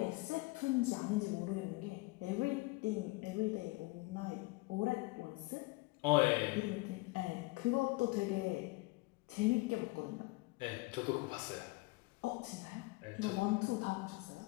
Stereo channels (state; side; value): quieter; right; 23.4 dB